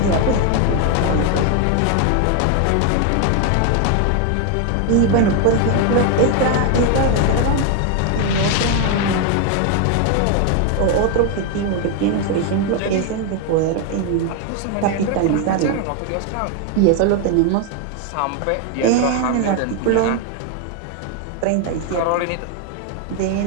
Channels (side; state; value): both; different; correlation 0.01